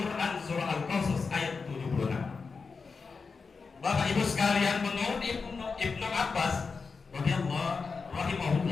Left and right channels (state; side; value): quieter; right; 4.8 dB